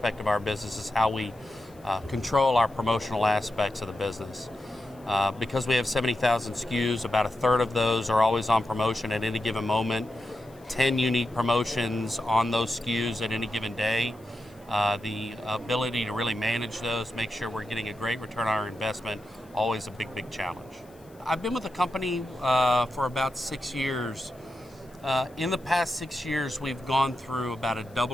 of our business is how we control our promotional aspects of the business. Because we have 70,000 SKUs, about a third of those are always on promotion at any given moment. 10 unique promotions on those SKUs at any given day. The ability to really manage those, make sure we're getting a great return on our investment, always a big, big challenge. I've been with the company for about 6 years. In the past 6 years, we've gone through about a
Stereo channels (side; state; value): left; noise; hiss, 29 dB below the sound